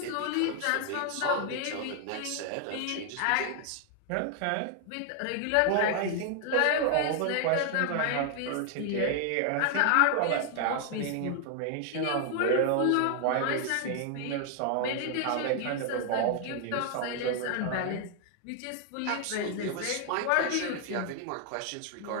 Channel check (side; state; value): both; different; correlation 0.00